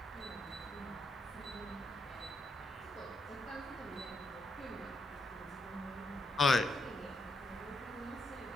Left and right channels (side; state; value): both; normal; correlation 0.78